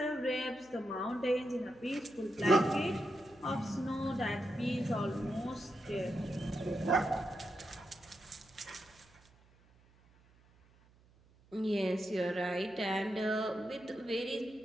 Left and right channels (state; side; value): noise; right; hum, 29 dB below the sound